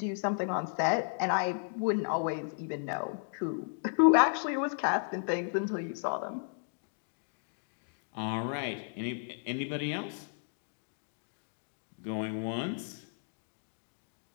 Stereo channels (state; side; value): silent; right; digital silence